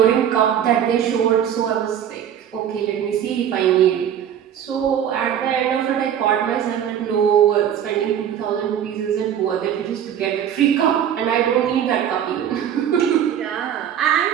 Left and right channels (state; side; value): quieter; left; 9.5 dB